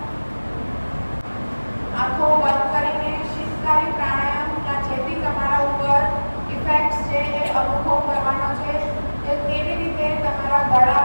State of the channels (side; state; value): both; inverted; correlation -1.00